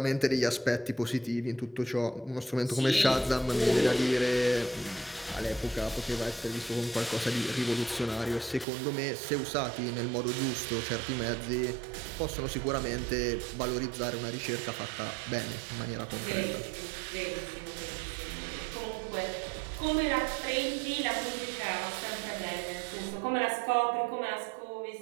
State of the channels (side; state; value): left; drops out; at 8.7 s